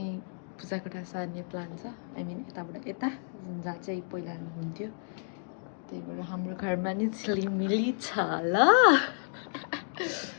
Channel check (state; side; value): silent; right; 57 dB below the other